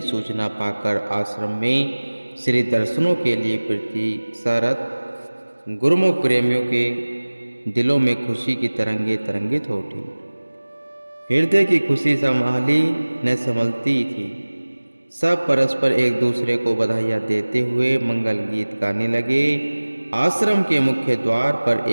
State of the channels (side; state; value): both; inverted; correlation -1.00